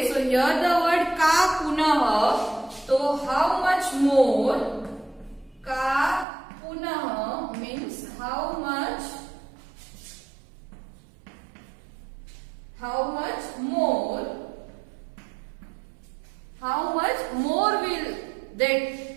सो हियर द वर्ड का पुनः. तो हाउ मच मोर. का पुनः means how much more. How much more will that?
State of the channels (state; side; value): drops out; left; at 6.2 s